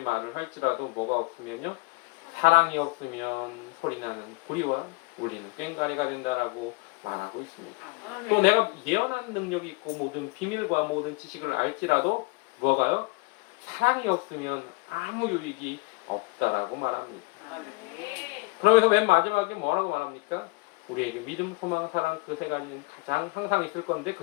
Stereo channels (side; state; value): right; quieter; 27.8 dB